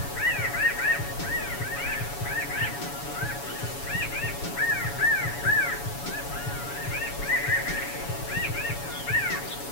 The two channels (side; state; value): right; late; 7.1 ms